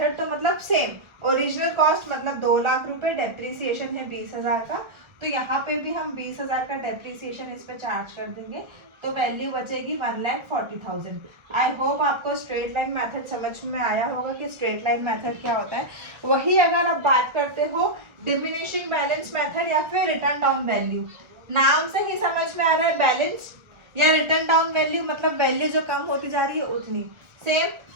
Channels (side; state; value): left; late; 1.3 ms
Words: तो मतलब सेम ओरिजिनल कॉस्ट मतलब 2 लाख रुपए, डेप्रिसिएशन है 20,000 का, तो यहाँ पे भी हम 20,000 का डेप्रिसिएशन इस पे चार्ज कर देंगे, तो वैल्यू बचेगी 1,40,000। आई होप आपको स्ट्रेट लाइन मेथड समझ में आया होगा कि स्ट्रेट लाइन मेथड क्या होता है। वही अगर आप बात करते हो डिमिनिशिंग बैलेंस मेथड या फिर रिटर्न डाउन वैल्यू, नाम से ही समझ में आ रहा है बैलेंस या रिटर्न डाउन वैल्यू मतलब वैल्यू जो कम होती जा रही है उतनी। सेम